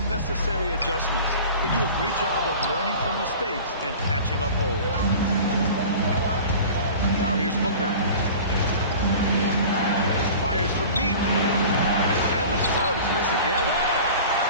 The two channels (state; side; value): inverted; both; correlation -0.39